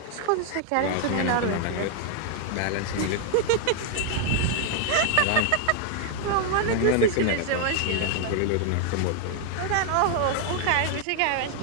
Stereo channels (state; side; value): different; both; correlation 0.00